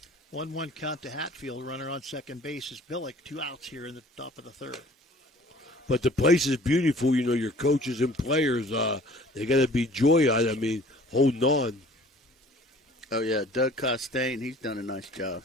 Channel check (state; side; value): normal; both; correlation 0.50